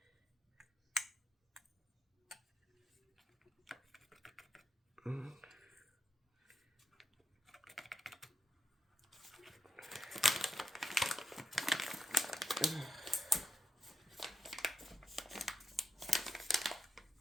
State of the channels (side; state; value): both; normal; correlation 0.84